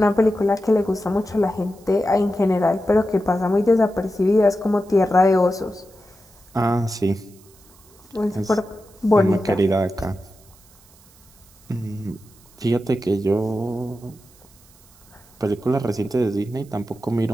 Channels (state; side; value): noise; right; hiss, 27 dB below the sound